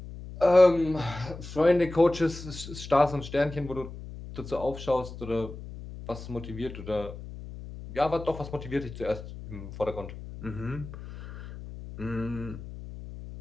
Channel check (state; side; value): noise; left; hum, 12 dB below the sound